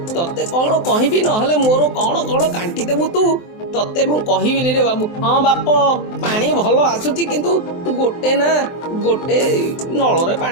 तते कौन कहबी नहले मोर कौन कौन कांटी देबु तू तते मु कहबिनी रे बाबू। हाँ बाप पानी भल आसुची किंतु गोटे नल रे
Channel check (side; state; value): right; late; 23 ms